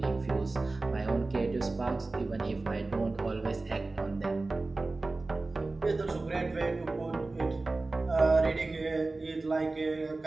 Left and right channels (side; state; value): left; quieter; 3.3 dB